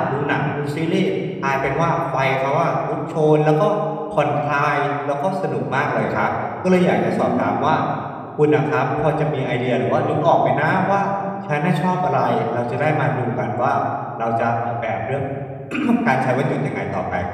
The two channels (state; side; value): identical; both; correlation 1.00